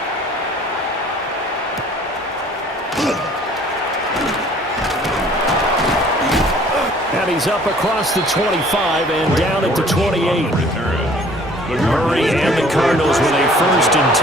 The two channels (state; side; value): normal; both; correlation 0.54